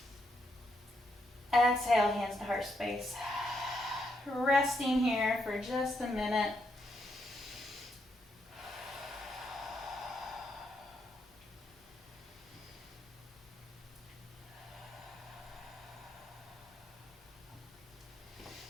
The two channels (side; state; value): both; normal; correlation 0.78